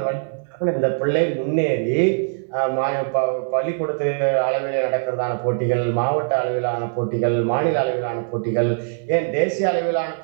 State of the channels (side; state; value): left; silent; digital silence